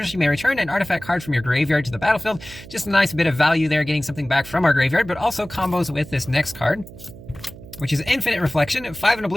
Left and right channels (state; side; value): noise; right; hum, 17 dB below the sound